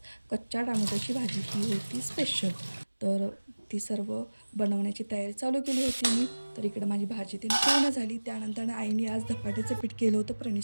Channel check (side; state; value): both; inverted; correlation -1.00